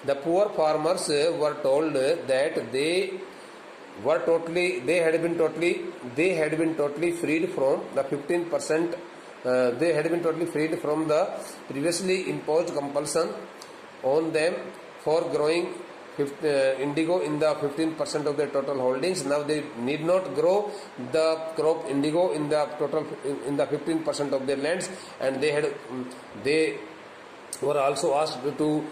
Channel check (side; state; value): both; identical; correlation 1.00